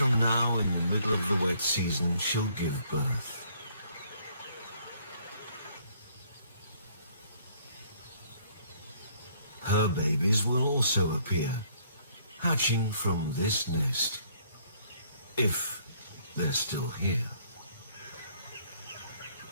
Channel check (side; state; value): both; inverted; correlation -0.64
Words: now, in the middle of the wet season, she'll give birth. Her babies will also appear, hatching from this nest, if they're still here.